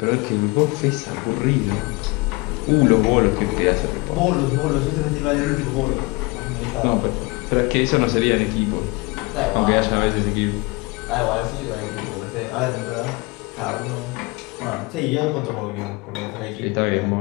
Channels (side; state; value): right; quieter; 25.9 dB